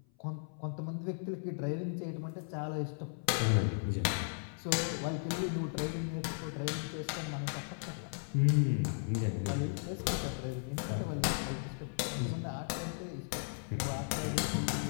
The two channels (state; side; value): silent; right; 54 dB below the other